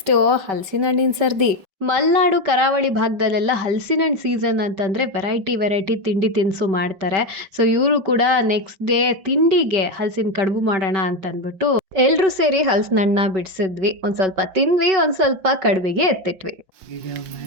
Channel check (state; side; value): late; left; 5.2 ms